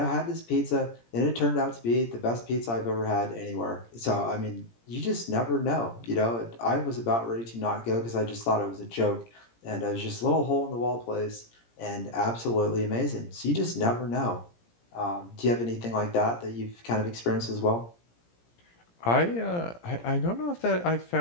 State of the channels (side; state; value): right; late; 17 ms